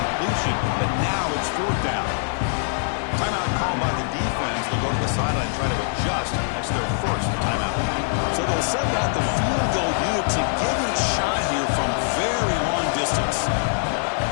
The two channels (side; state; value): right; silent; digital silence